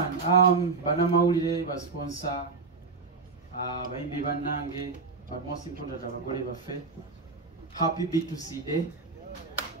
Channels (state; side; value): quieter; left; 4.3 dB